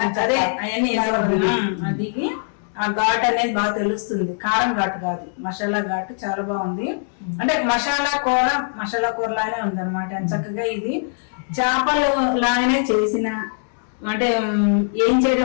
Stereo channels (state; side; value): silent; right; 65 dB below the other